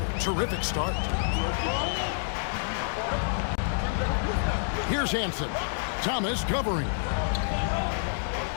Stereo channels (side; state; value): right; silent; digital silence